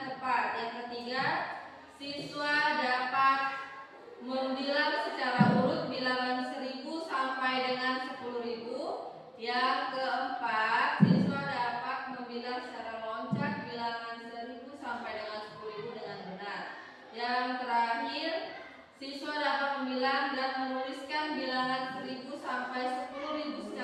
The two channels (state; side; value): identical; both; correlation 1.00